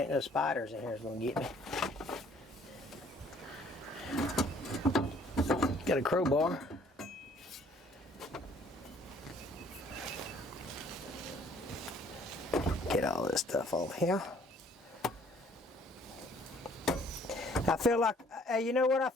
ain't no spiders in here that's gonna get me. Got a crowbar. Get all this stuff off here. I feel like, hey, you know what I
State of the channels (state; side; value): normal; both; correlation 0.59